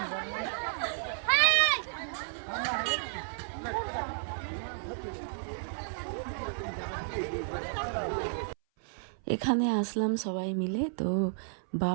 এখানে আসলাম সবাই মিলে, তো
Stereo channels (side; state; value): left; silent; 56 dB below the other